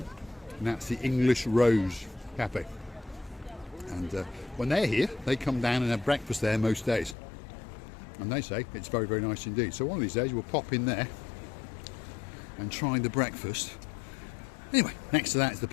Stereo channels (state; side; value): drops out; right; at 7.2 s